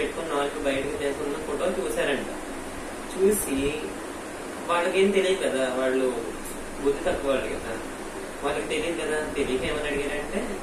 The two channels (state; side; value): identical; both; correlation 1.00